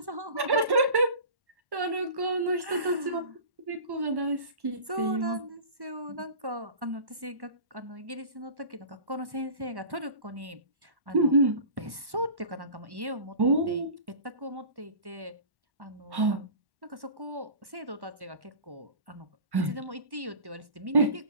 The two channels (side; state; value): left; late; 1.1 ms